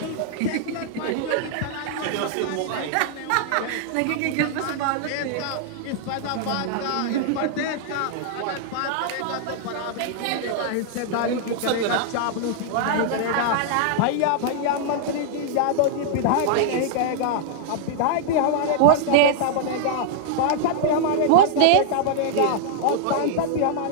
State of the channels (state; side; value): different; both; correlation -0.01